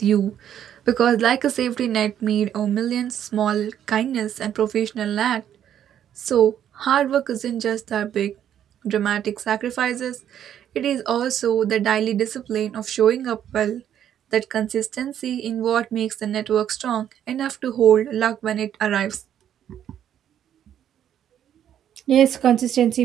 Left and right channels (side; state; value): left; quieter; 10.0 dB